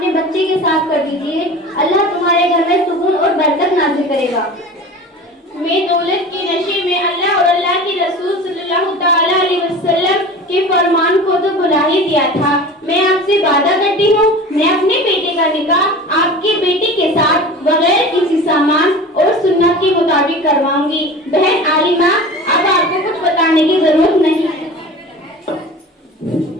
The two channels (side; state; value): both; normal; correlation 0.36